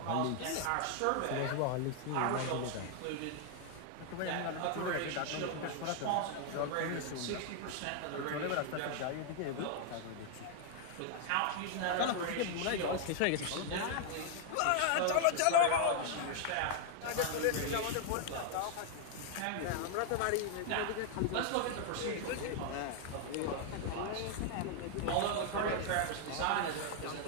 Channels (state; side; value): different; both; correlation 0.00